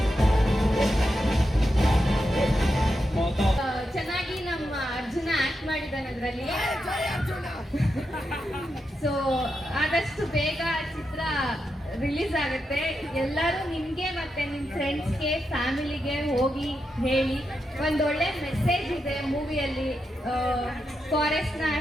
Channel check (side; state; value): both; normal; correlation 0.86